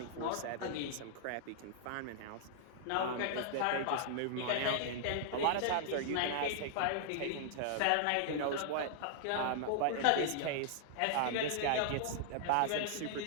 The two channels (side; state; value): both; different; correlation -0.01